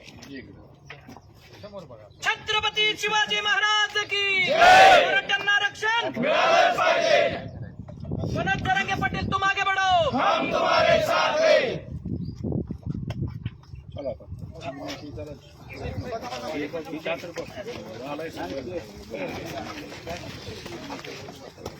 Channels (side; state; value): both; identical; correlation 1.00